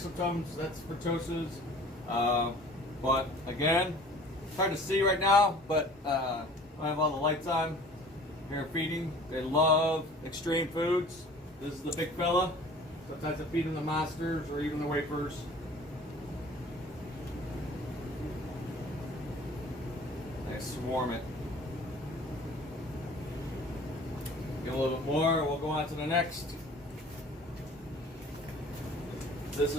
that's Fritosas. But again, it's hard to see right now, but I have all the lights on. Here feeding. They love Xtreme Foods. This is the big fella. Sometimes I feed them the monsters or even the wafers. I swarm it. Get a little bit more, we'll go on to the next. This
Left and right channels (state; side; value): normal; both; correlation 0.47